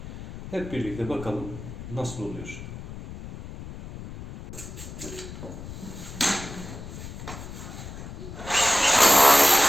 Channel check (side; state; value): left; noise; rumble, 12 dB below the sound